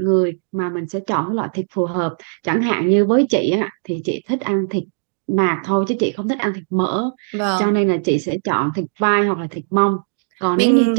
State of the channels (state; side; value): silent; left; digital silence